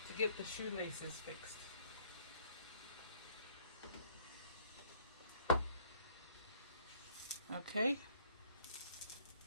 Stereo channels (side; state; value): both; inverted; correlation -0.60